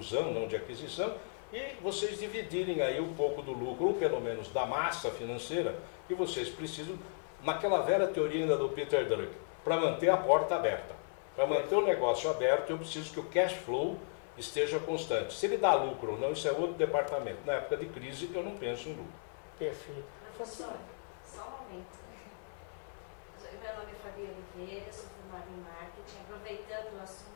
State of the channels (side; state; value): right; silent; 54 dB below the other